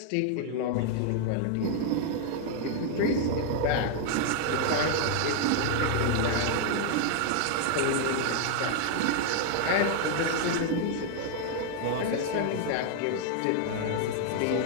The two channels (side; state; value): both; different; correlation 0.00